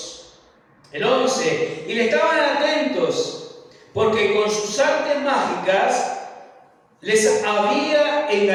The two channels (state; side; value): identical; both; correlation 1.00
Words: El 11, y le estaban atentos, porque con sus artes mágicas les había